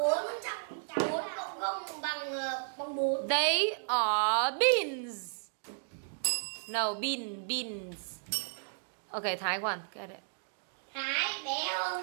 They are beans. No, beans. Okay, Thái one. Get it. Thái bé hơn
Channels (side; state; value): left; silent; digital silence